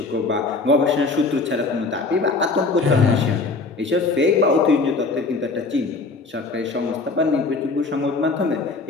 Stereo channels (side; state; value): right; quieter; 3.8 dB